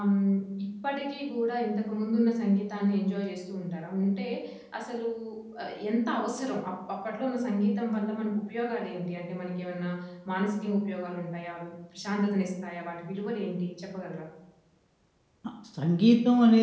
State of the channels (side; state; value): both; identical; correlation 1.00